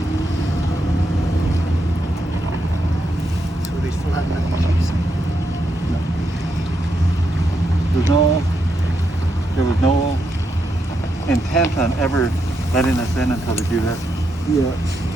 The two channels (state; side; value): normal; both; correlation 0.81